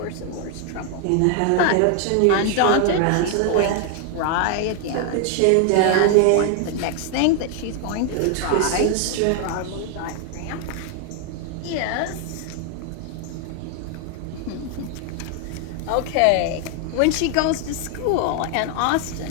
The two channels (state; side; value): different; both; correlation 0.00